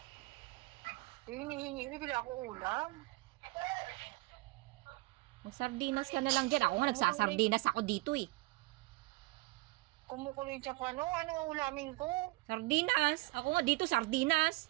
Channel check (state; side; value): quieter; left; 23.6 dB